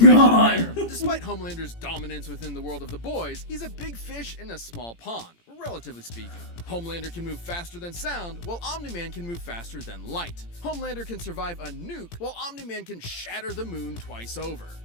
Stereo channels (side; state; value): right; late; 17 ms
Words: god. there. Despite Homelander's dominance within the world of the boys, he's a big fish in a small pond, relatively speaking. Homelander can move faster than sound, while Omni-Man can move faster than light. Homelander can survive a nuke, while Omni-Man can shatter the moon twice over.